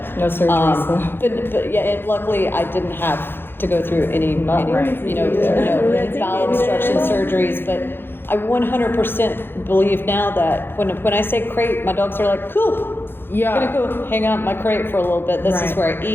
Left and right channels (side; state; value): right; late; 0.10 ms